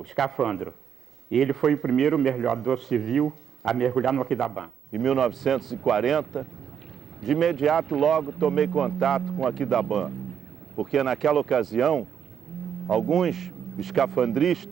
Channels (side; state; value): left; quieter; 8.2 dB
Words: escafandro. E ele foi o primeiro mergulhador civil a mergulhar no Aquidabã. Em 1940, de imediato logo tomei contato com o Aquidabã, porque naquela ocasião, alguns